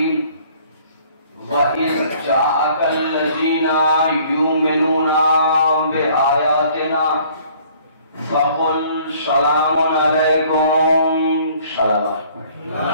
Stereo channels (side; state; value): both; inverted; correlation -0.57